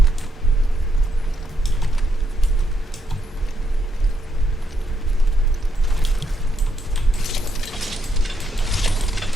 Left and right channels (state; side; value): normal; both; correlation 0.77